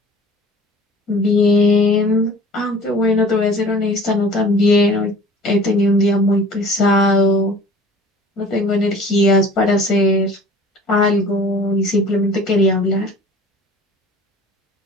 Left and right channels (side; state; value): both; normal; correlation 0.45